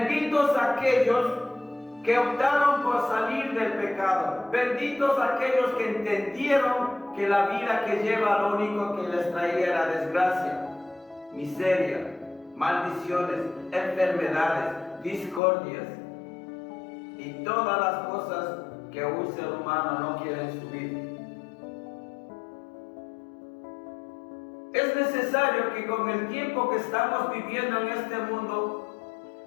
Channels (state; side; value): drops out; right; at 15.4 s